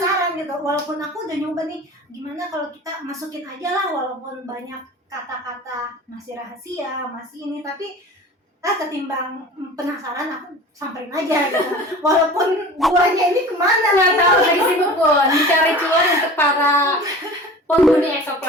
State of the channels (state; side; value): normal; both; correlation 0.39